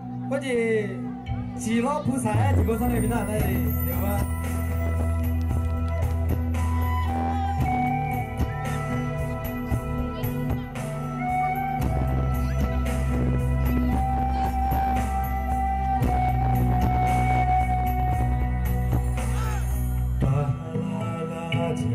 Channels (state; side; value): identical; both; correlation 1.00